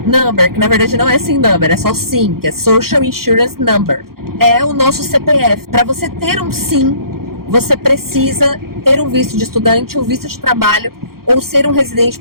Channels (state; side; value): late; left; 0.93 ms